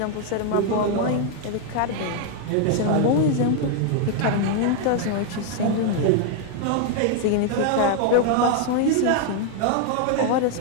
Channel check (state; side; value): different; both; correlation 0.00